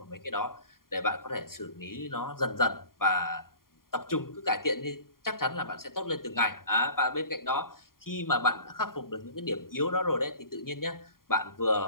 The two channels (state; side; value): late; right; 0.91 ms